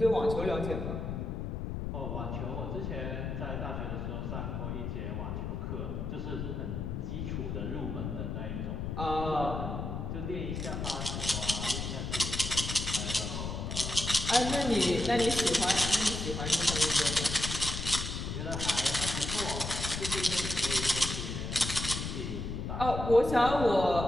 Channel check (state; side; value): noise; left; rumble, 4 dB below the sound